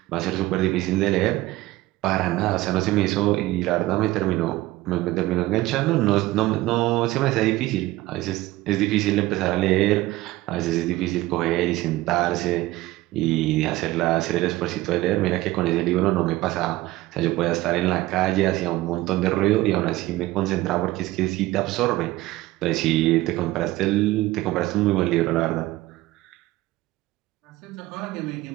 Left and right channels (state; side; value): quieter; left; 17.7 dB